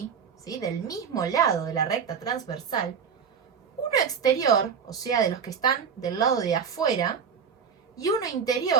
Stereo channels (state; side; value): quieter; left; 6.7 dB